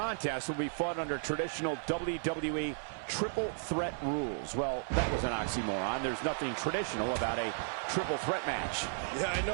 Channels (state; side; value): silent; left; 55 dB below the other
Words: will be fought under traditional WWE triple threat rules. Well, that was an oxymoron. There's nothing traditional about a triple threat match. Yeah, I